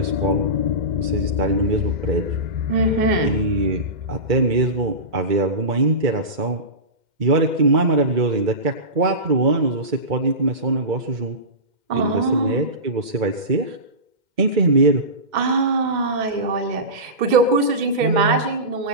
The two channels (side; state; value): left; late; 2.1 ms